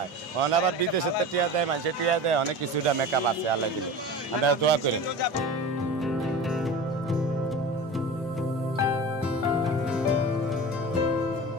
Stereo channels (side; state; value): both; normal; correlation 0.33